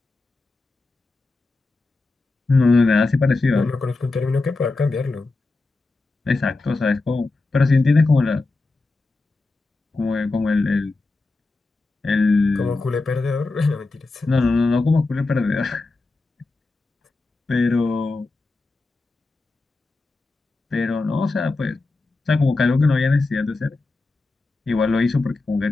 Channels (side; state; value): right; quieter; 3.4 dB